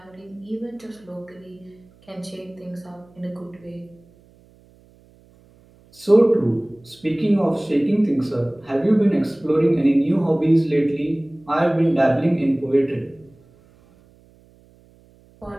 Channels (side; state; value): right; noise; hum, 29 dB below the sound